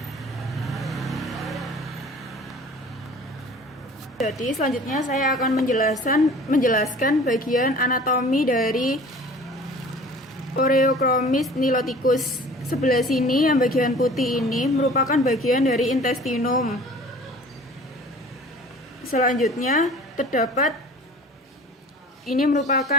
Jadi selanjutnya saya akan menjelaskan bagian anatomi dari Oreochromis niloticus. Sebelah sini yang bagian putih ini merupakan bagian dari intestinum. Selanjutnya terdapat ini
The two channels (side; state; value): both; normal; correlation 0.45